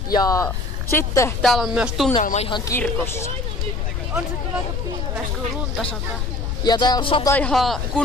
Ja sitten täällä on myös tunnelma ihan kirkossa. On se kyllä aika pilves, kun lunta sataa. Ja täällä sataa ihan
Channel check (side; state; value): left; noise; rumble, 2 dB below the sound